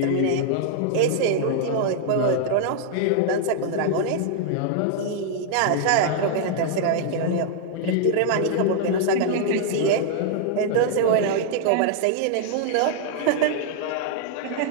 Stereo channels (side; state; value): both; different; correlation -0.01